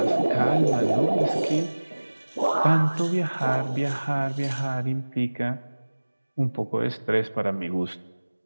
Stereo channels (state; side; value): inverted; both; correlation -1.00